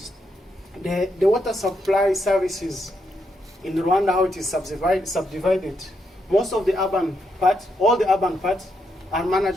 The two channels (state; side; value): normal; both; correlation 0.80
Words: the water supply services in Rwanda, how it is subdivided, most of the urban part, all the urban parts are